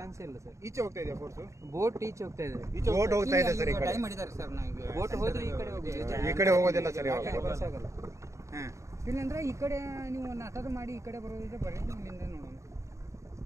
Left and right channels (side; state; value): left; late; 0.14 ms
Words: ಇಲ್ಲ ಸರ್. ಈಚೆ ಹೋಗ್ತಾ ಇದೆಯಾ ಫೋರ್ಸು? ಬೋಟ್ ಈಚೆ ಹೋಗ್ತಾ ಇದೆ. ಬೋಟ್ ಹೋಗ್ತಾ ಇದೆ ಸರ್. ಈ ಕಡೆ ಡೈ ಮಾಡಿದ್ದಾರೆ ಸರ್. ನಾವು ಬೋಟ್ ಹೋದ್ರೆ ಈ ಕಡೆ ಹೋಗ್ತೀವಿ. ಈ ಕಡೆ ಹೋಗೋದಿಲ್ಲ ಸರ್. ಇವಾಗ ಆಗಲ್ಲ. ಹಾಂ, ಇಲ್ಲಂದ್ರೆ ಈ ಕಡೆ ನೀವು ನಾಟಕ ಮಾಡಿ ಈ ಕಡೆ ಬರೋದಿದ್ರೆ ಬರೀ ಇಲ್ಲಿಂದ ನೋಡೋಣ.